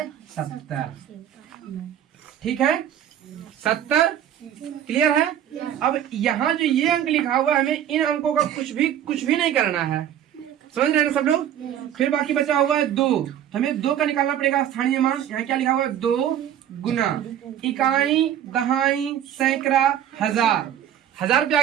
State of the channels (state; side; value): quieter; left; 10.4 dB